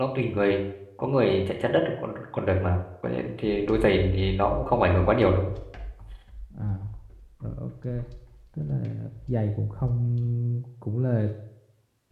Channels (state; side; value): identical; both; correlation 1.00